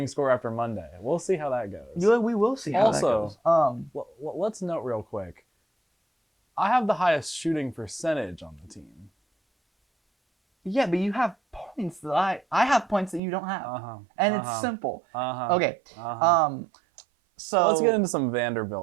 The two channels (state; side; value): drops out; left; at 13.2 s